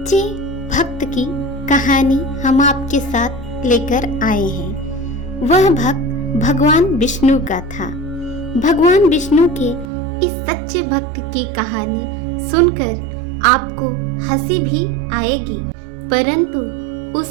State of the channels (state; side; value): drops out; left; at 9.9 s